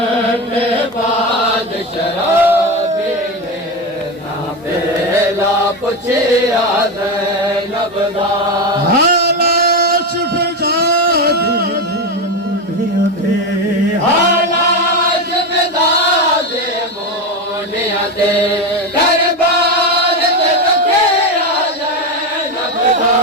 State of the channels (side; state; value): both; normal; correlation 0.16